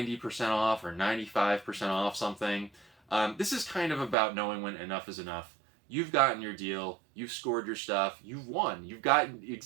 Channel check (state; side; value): drops out; left; at 4.2 s